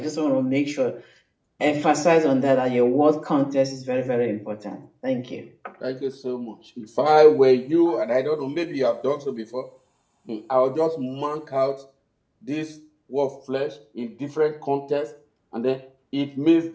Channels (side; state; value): both; identical; correlation 1.00